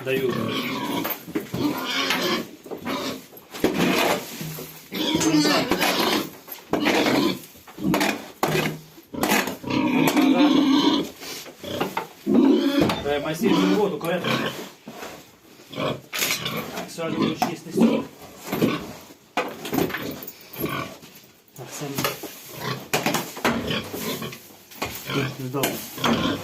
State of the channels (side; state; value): both; identical; correlation 1.00